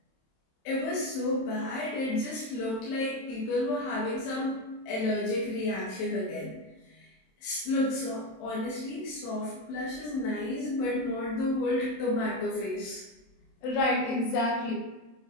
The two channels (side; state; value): right; late; 27 ms